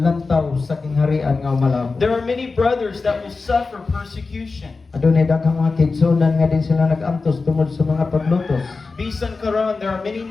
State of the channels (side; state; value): right; quieter; 4.1 dB